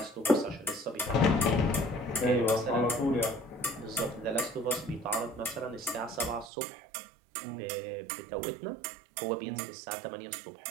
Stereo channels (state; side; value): drops out; left; at 6.5 s